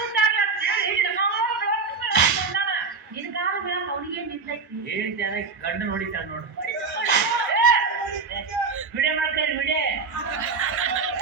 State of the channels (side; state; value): left; quieter; 4.7 dB